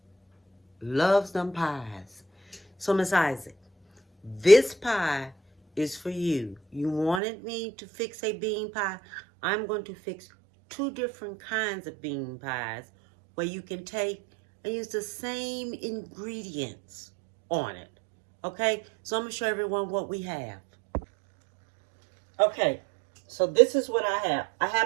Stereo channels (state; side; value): drops out; left; at 7.2 s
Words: loves them pies. So Miss Isaac, this pie is for you. You wanted me to fix a bean pie. I'm going to fix two different kinds of bean pies where you can take and use the same ingredients on it. Okay, so I'm going to show everyone what we have. Okay, so this is what I have. I